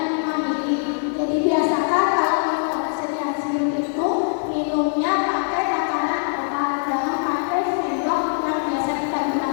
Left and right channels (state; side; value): silent; right; 64 dB below the other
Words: 5 mili. Jadi biasakan kalau minum obat sediaan sirup itu minumnya pakai takaran obat, jangan pakai sendok yang biasa kita